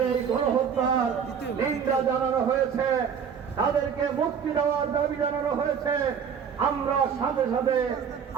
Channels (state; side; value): quieter; left; 7.2 dB